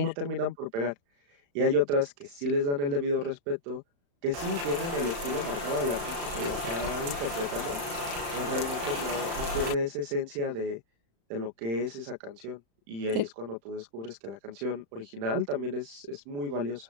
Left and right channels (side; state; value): left; late; 35 ms